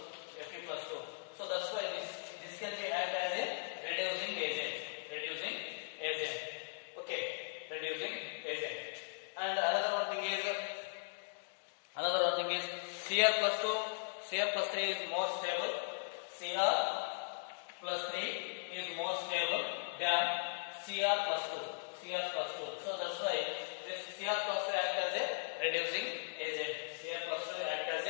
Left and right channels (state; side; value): silent; right; digital silence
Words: So that's why this can be act as a reducing agent. Okay, reducing agent. And another one thing is Cr plus 3 is more stable. Cr plus 3 is more stable than Cr plus 2. So that's why this Cr plus 2 act as a reducing